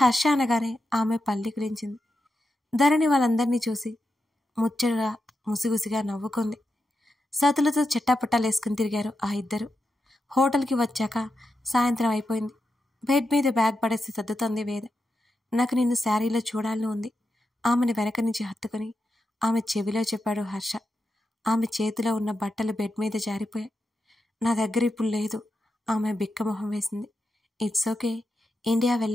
అనగానే ఆమె పల్లికిరించింది. ధరణి వాళ్ళందరినీ ముచ్చటగా ముసిగుసిగా నవ్వుకుంది. సతులతో చెట్టాపట్టాలేసుకుని తిరిగారు ఆ ఇద్దరు. హోటల్కి వచ్చాక సాయంత్రం అయిపోయింది. బెడ్ మీద బ్యాగ్ పడేసి సర్దుతోంది వేద. నాకు నిన్ను శారీలో చూడాలని ఉంది. ఆమెను వెనక నుంచి హత్తుకుని ఆమె చెవిలో చెప్పాడు హర్ష. ఆమె చేతిలో ఉన్న బట్టలు బెడ్ మీద జారిపోయాయి. నా దగ్గర ఇప్పుడు లేదు. ఆమె బిక్కమొహం వేసింది. ఇట్స్ ఓకే, ఇండియా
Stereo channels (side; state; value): both; normal; correlation 0.88